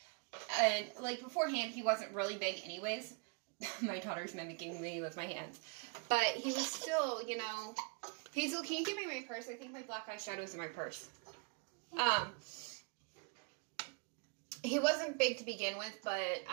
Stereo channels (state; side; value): quieter; left; 35.1 dB